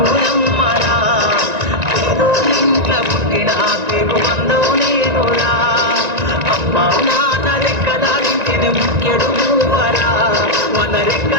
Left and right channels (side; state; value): left; late; 1.9 ms